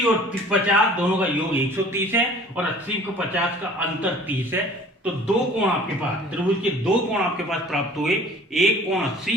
और 50 दोनों का योग 130 है और 80 को 50 का अंतर 30 है। तो दो कोण आपके पास, त्रिभुज के दो कोण आपके पास प्राप्त हुए, एक कोण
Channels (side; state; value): both; normal; correlation 0.49